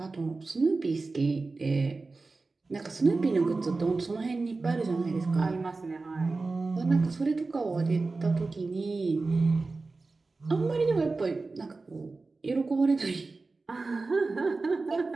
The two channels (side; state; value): left; quieter; 3.7 dB